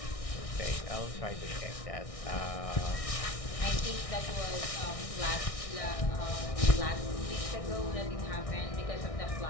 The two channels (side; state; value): right; late; 1.6 ms